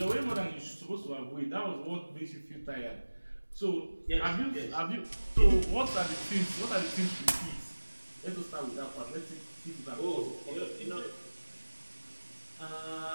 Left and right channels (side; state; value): both; inverted; correlation -1.00